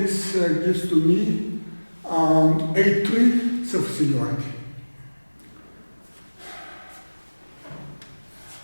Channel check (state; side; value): inverted; both; correlation -1.00